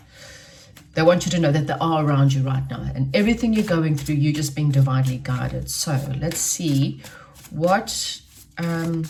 they want you to know that they are around you right now, and everything you're going through, you're just being divinely guided. So let's see what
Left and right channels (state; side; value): identical; both; correlation 1.00